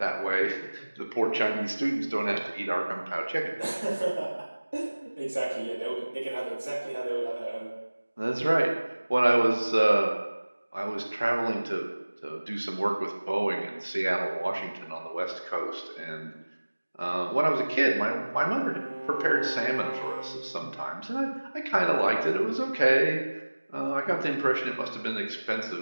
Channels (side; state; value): both; inverted; correlation -1.00